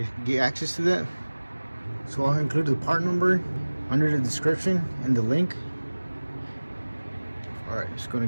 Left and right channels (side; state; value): both; inverted; correlation -1.00